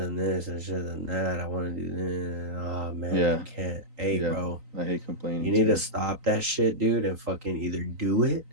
this, I should have done that. I want to do this. Oh man, Yeah. I can't." Hey, Yeah. bro, I hate you complaining need to too. stop that shit, dude, and fucking either do it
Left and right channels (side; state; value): left; late; 3.9 ms